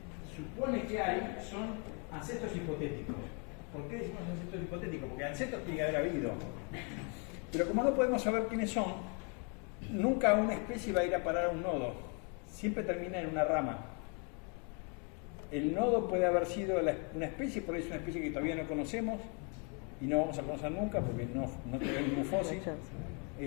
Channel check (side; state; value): right; quieter; 36.4 dB